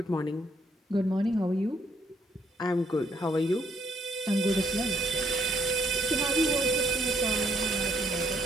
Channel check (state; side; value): normal; both; correlation 0.69